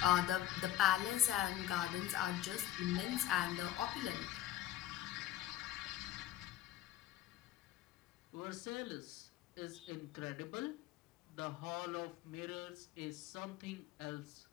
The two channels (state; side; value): quieter; right; 13.1 dB